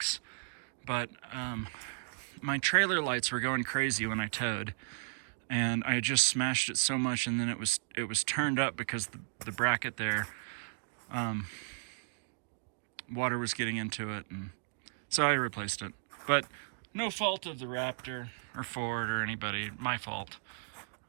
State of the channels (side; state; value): left; silent; digital silence